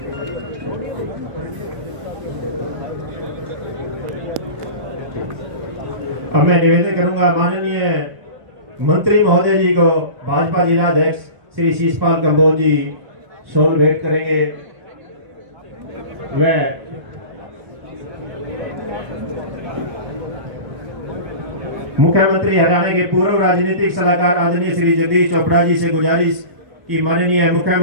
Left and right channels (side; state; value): left; late; 1.0 ms